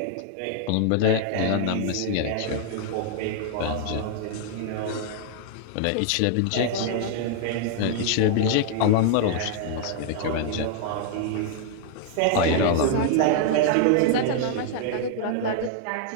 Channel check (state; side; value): different; both; correlation 0.00